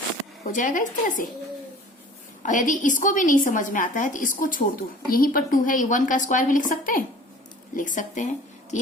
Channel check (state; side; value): normal; both; correlation 0.46